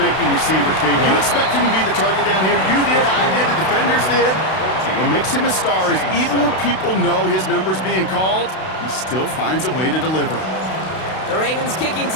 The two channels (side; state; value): right; late; 32 ms